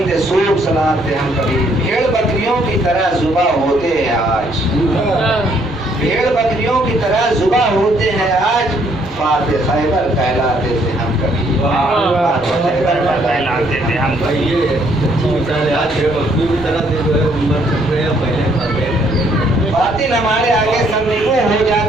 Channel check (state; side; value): normal; both; correlation 0.67